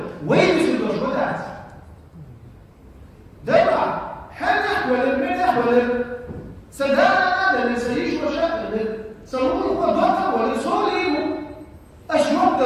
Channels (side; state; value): both; identical; correlation 1.00